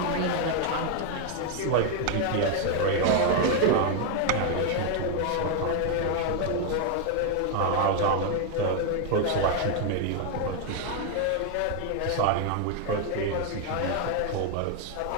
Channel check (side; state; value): both; different; correlation 0.01